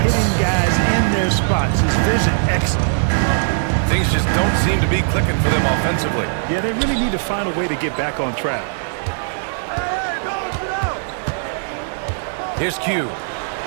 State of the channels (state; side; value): silent; left; digital silence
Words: hitting guys in their spots. His vision excellent. Things just don't seem to be clicking for them offensively. Yeah, they really need to find a way to get back on track. Here's Q.